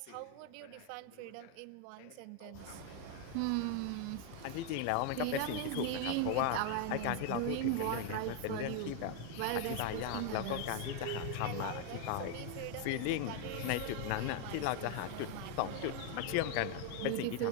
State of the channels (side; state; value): both; different; correlation 0.01